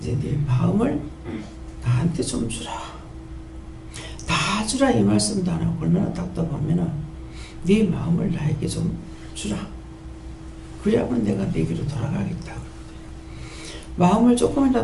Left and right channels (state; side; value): identical; both; correlation 1.00